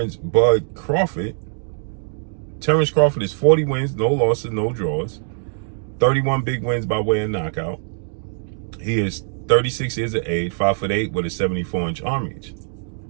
Bud Crawford. Terence Crawford is 40 wins, no losses, no draws, 31 big wins by way of knockout. He is 36 years of age, 5'8" with a 74-inch arm reach.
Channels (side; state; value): left; silent; digital silence